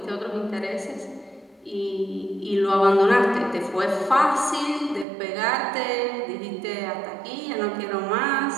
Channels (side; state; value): left; drops out; at 5.1 s